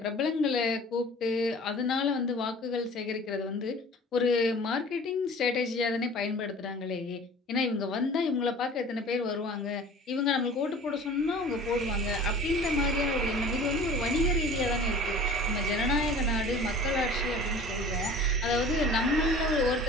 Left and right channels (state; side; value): normal; both; correlation 0.44